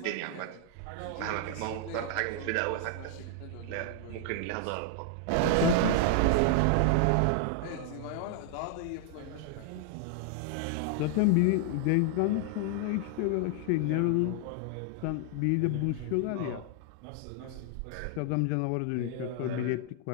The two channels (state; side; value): different; both; correlation 0.00